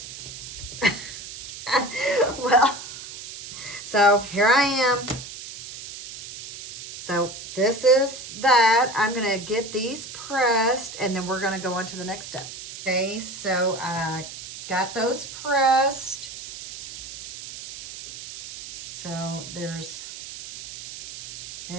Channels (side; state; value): right; noise; hiss, 12 dB below the sound